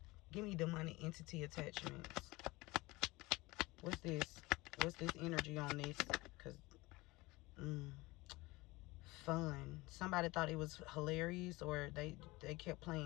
Give me the money entity attachments. What's this? What's this energy on this? Because, fun. Somebody thought it was hilarious, or they kept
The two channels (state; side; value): quieter; right; 21.6 dB